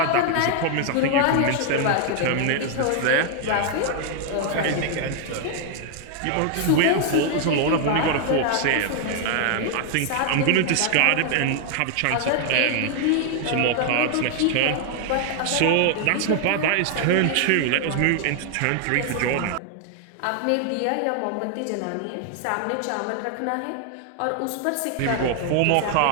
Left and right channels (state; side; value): different; both; correlation 0.00